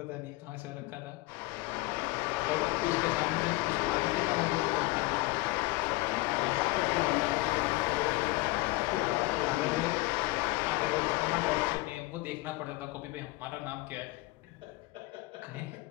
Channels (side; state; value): right; quieter; 21.2 dB